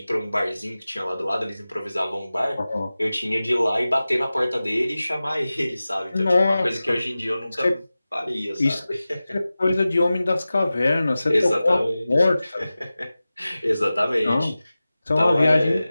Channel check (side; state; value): both; inverted; correlation -0.96